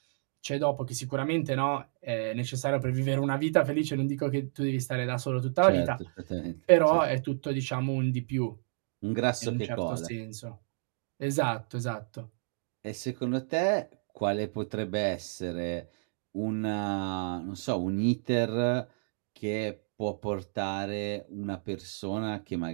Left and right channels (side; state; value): left; silent; digital silence